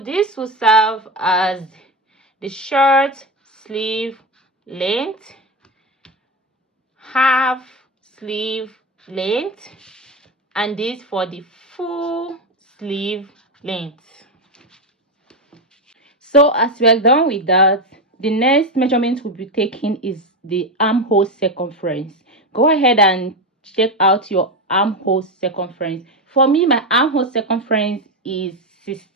this will serve as the short sleeve length, half sleeve length, and this for the full sleeve length. So as we are done with that, the next measurement we'll be taking is the armhole circumference. Go ahead and check out your armhole circumference. For me, my armhole circumference is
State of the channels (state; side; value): normal; both; correlation 0.14